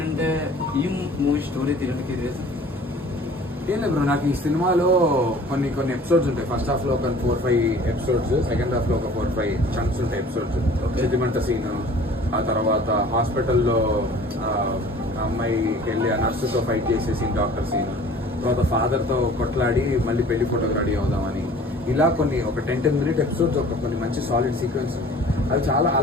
ఈ మూవీ స్టోరీ తీయడానికి రీజన్ ఏం లేదు బ్రో, నాకు ఈ సినిమాలో కొన్ని ఎపిసోడ్స్ ఉంటాయి. ఫస్ట్ హాఫ్ లో ఒక 4-5 ఎపిసోడ్స్, సెకండ్ హాఫ్ లో ఒక 4-5 చంక్స్ ఉంటాయి ఎపిసోడ్స్. సెంటిమెంట్ సీన్, ఆ తర్వాత హాస్పిటల్లో అమ్మాయికి వెళ్ళి ఆ నర్సుతో ఫైట్ చేసే సీన్, డాక్టర్ సీన్, తర్వాత ఫాదర్ తో కొట్లాడి మళ్ళీ పెళ్లి ఫోటోకి రెడీ అవుదామని, ఇలా కొన్ని ఒక 10 మినిట్ ఎపిసోడ్స్, ఒక కొన్ని మంచి సాలిడ్ సీక్వెన్స్. అవి చాలా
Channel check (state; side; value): normal; both; correlation 0.47